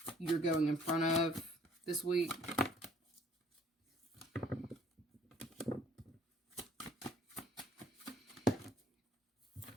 you're going in front of this week?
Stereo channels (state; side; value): normal; both; correlation 0.58